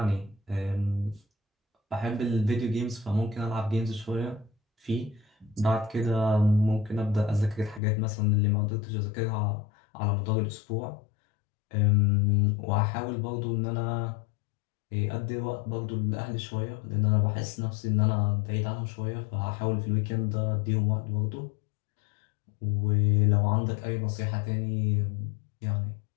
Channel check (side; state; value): right; drops out; at 7.8 s